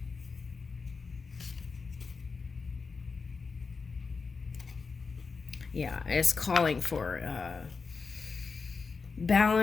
Yeah, it's calling for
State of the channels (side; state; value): right; quieter; 4.8 dB